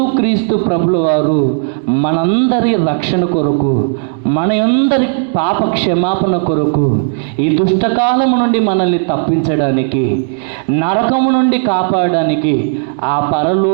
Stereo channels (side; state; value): left; silent; digital silence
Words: ప్రభుల వారు మనందరి రక్షణ కొరకు, మనందరి పాప క్షమాపణ కొరకు, ఈ దుష్టకాలము నుండి మనల్ని తప్పించడానికి, నరకము నుండి కాపాడడానికి, ఆ